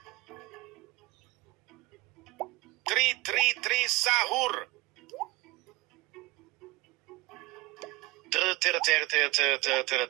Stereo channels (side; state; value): left; quieter; 21.9 dB